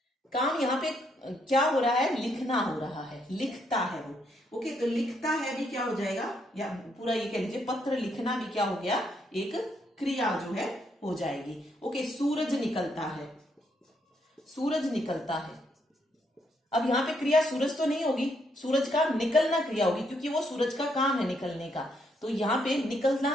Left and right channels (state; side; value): normal; both; correlation 0.75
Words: काम यहां पे क्या हो रहा है? लिखना हो रहा है, लिखता है वो। ओके, तो लिखता है भी क्या हो जाएगा, या पूरा ये कह लीजिए पत्र लिखना भी क्या हो गया? एक क्रिया जो है हो जाएगी। ओके, सूरज निकलता है। सूरज निकलता है। अब यहां पे क्रिया सूरज तो नहीं होगी, सूरज का निकलना क्रिया होगी, क्योंकि वो सूरज का काम है निकलने का। तो यहां पे